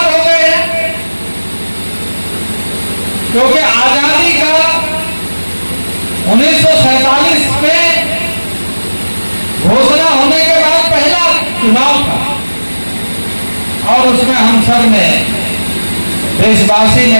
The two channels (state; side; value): inverted; both; correlation -1.00